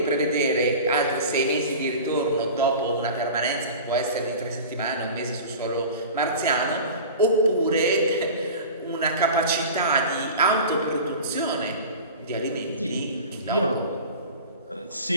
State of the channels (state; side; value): inverted; both; correlation -0.35